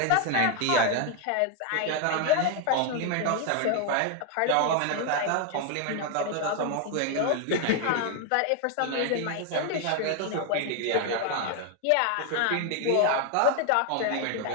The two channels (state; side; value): different; both; correlation 0.01